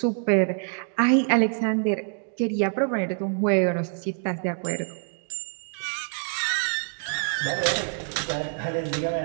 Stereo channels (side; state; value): left; silent; 57 dB below the other